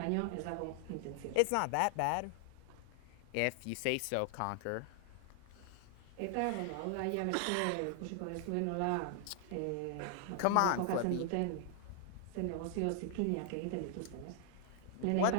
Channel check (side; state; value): both; different; correlation 0.00